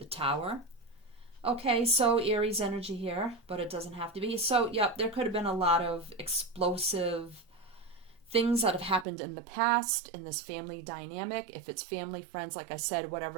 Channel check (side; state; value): left; drops out; at 9.1 s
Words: Tower. Okay, so Aries energy here, but it doesn't have to be. So, yep, there could have been a lot of explosive things that have happened in the past in this family dynamic. If it's family, friends, like I said,